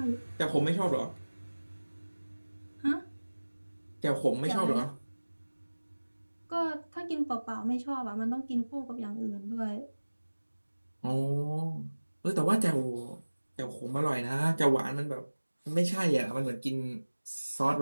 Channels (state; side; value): inverted; both; correlation -1.00